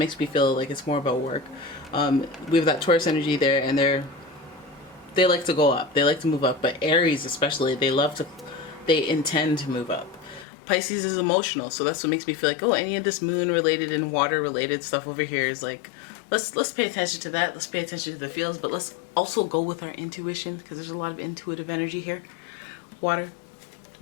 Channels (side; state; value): right; drops out; at 10.5 s